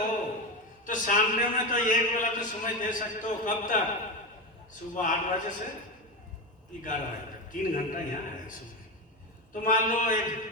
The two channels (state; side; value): normal; both; correlation 0.17